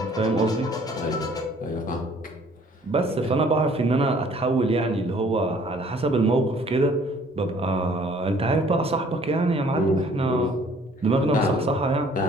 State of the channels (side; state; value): both; normal; correlation 0.57